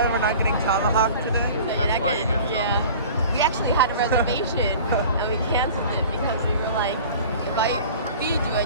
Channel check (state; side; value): inverted; both; correlation -0.41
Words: we're not getting tomahawk today? So you're That's not why you getting- get yeah. We actually had a reservation and we canceled it because we were like, if I feed you